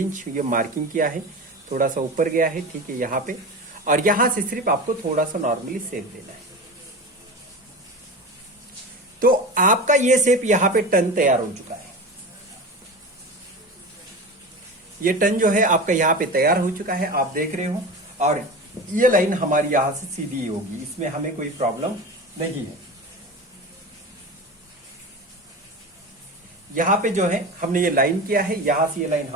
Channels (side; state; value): both; normal; correlation 0.28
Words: ये मार्किंग किया है, थोड़ा सा ऊपर गया है, ठीक है यहां पे। और यहां से सिर्फ आपको थोड़ा सा नॉर्मली शेप देना है। तो आपका ये शेप यहां पे टर्न तैयार हो चुका है। ये टर्न जो है आपका यहां पे तैयार हो चुका है, आप देख रहे हो। और ये लाइन हमारी यहां से सीधी होगी, इसमें हमें कोई प्रॉब्लम नहीं है। यहां पे जो है हमने ये लाइन किया है, यहां से ये लाइन